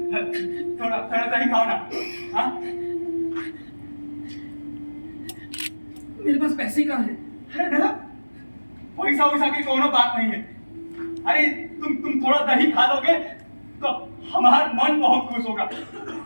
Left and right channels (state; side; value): inverted; both; correlation -1.00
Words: थोड़ा थोड़ा दही खाओ ना। हाँ, मेरे पास पैसे कहाँ हैं? अरे दादा, पैसा वैसा की कोनो बात नहीं है। अरे तुम थोड़ा दही खा लोगे तो हमारा मन बहुत खुश होगा।